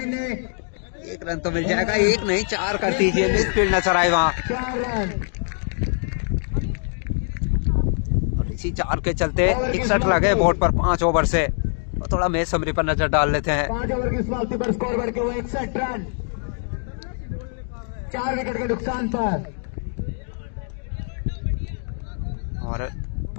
1 रन तो मिल जाएगा। 1 नहीं 4 कर दीजिए, मिडफील्ड नजर आए वहाँ। 4 रन। और इसी 4 के चलते 61 लगे बोर्ड पर 5 ओवर से। और थोड़ा मैच समरी पर नजर डाल लेते हैं। 5 ओवर की समाप्ति पर स्कोर बढ़ के हुए 61 रन, 4 विकेट के नुकसान पर। और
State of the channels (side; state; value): right; silent; 57 dB below the other